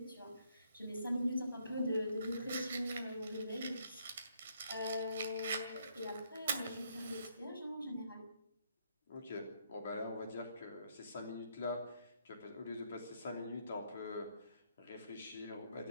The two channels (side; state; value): both; inverted; correlation -0.72